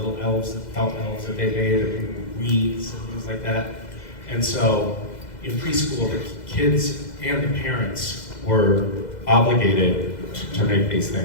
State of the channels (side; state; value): right; late; 2.0 ms